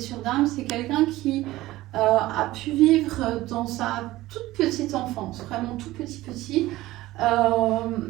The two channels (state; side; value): quieter; left; 17.2 dB